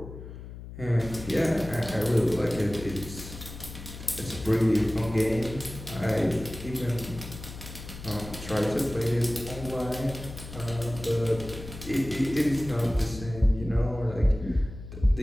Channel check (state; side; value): noise; left; hum, 12 dB below the sound